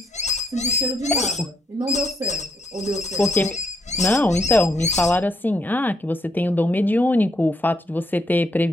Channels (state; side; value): normal; both; correlation 0.74